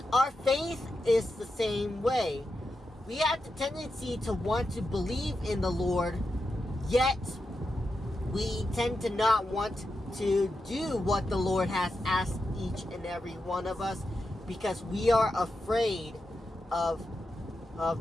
our faith is the same way. We have the tendency to want to believe in the Lord, yet we tend to not want to do what the Lord has asked each and every one of us, because we are afraid of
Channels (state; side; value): normal; both; correlation 0.88